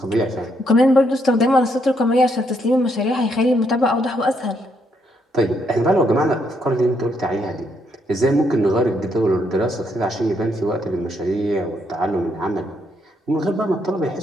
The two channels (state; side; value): normal; both; correlation 0.74